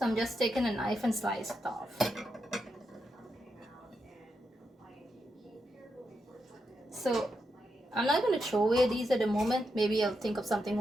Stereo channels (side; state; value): both; normal; correlation 0.85